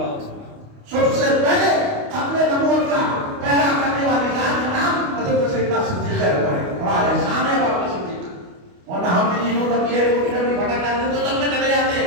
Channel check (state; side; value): late; left; 28 ms